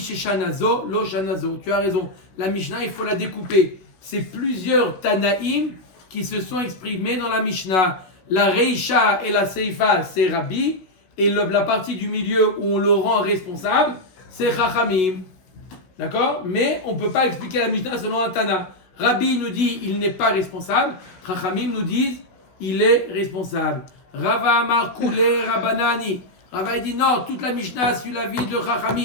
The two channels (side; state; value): right; late; 16 ms